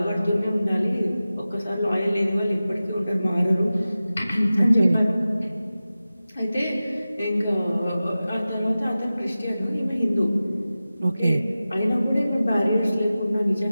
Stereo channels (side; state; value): both; inverted; correlation -0.95